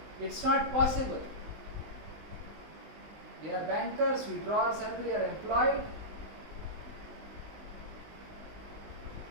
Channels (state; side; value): late; left; 19 ms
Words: It's not possible. We are bankers, we draw our salary, we are employed.